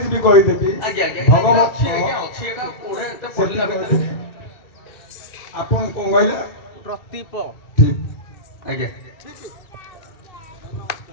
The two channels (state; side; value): late; right; 2.7 ms